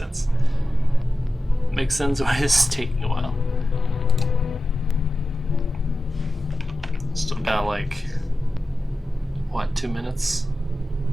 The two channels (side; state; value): both; normal; correlation 0.94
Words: Makes sense why it's taking a while. Still got like, what, 2 minutes?